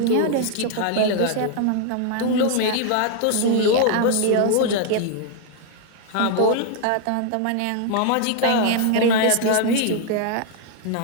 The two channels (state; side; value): different; both; correlation 0.00